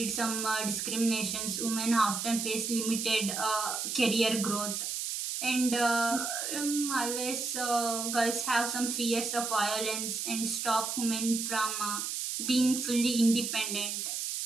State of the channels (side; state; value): right; noise; hiss, 3 dB below the sound